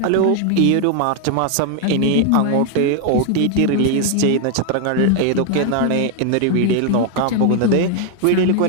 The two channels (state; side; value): different; both; correlation 0.01